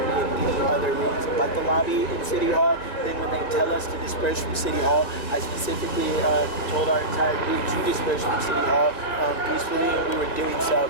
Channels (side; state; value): right; late; 1.9 ms